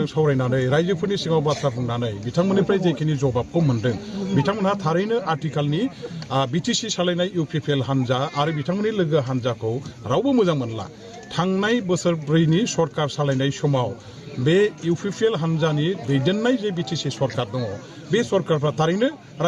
सावरायनानै रायजोफोरनि सिगाङाव बाथ्रा बुंनानै बिथांमोननिफ्राय जेखिनि जबाबखौ मोन्दों बिथांमोनहा थारैनो आथिखालनि बिटिसि सालायनाय इउपिपिएल हान्जा आरो बिथांमोननि लोगो हान्जाखौ रावबो मोजां मोनला थांनाय बोसोरब्रैनि सरकार सालायनाय समाव बे इउपिपिएल हान्जानि दैदेननाय जे बिटिसि सरकार दङ बे सरकारफ्रा थारैनो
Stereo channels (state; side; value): identical; both; correlation 1.00